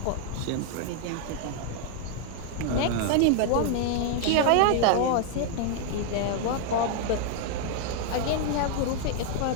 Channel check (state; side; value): different; both; correlation 0.00